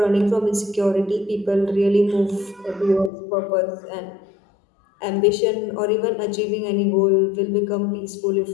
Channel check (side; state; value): right; drops out; at 3.1 s